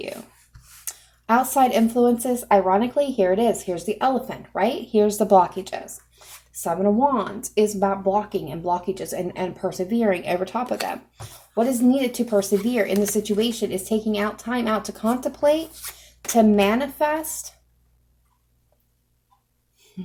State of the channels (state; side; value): identical; both; correlation 1.00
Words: Outside influences, ironically, here it is. Here's the elephant, right? Here's the blockages. Seven of Wands is about blocking and blockages and persevering over top of them. What is needed to persevere in the situation is taking out time out to contemplate, to manifest